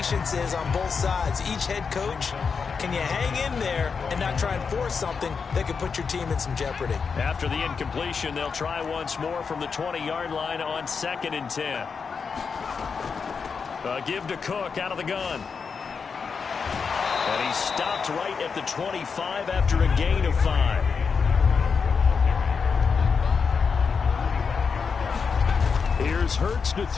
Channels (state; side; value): quieter; right; 5.6 dB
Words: is on both sides. Each head coach, can you hang in there and not try and force something that could put your team in some jeopardy? After the incompletion, they'll try once more from the 20-yard line on 2nd and 10. Give to Cook out of the gun. And he stopped right at the 25 after a gain of 5. Here's Hurts to